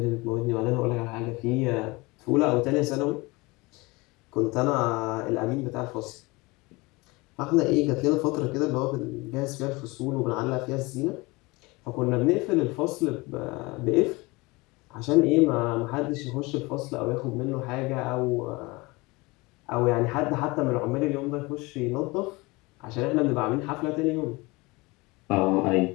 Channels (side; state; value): right; quieter; 24.0 dB